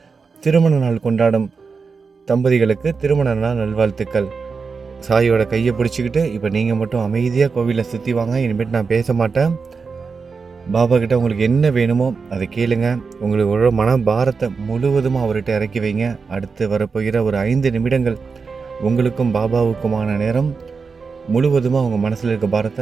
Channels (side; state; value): left; quieter; 5.0 dB